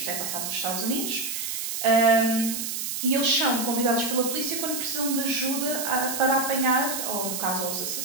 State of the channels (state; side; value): noise; right; hiss, 4 dB below the sound